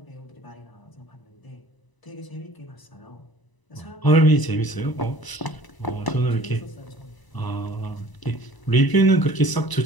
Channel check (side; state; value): right; late; 1.0 ms